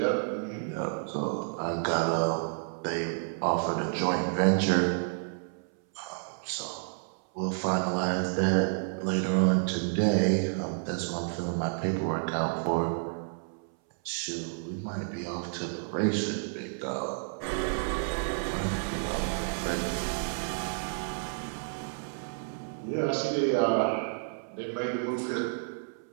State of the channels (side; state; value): left; silent; 58 dB below the other